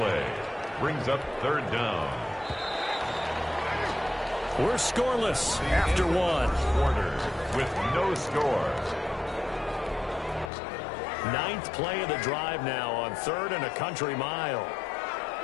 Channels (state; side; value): drops out; right; at 10.5 s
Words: Brings up third down. We're scoreless after 1. Quarter with no score. 9th play of the drive now on 3rd and a country mile.